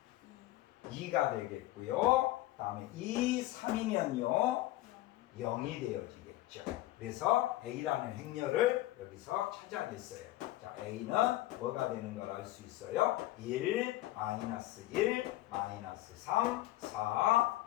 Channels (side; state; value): right; quieter; 16.4 dB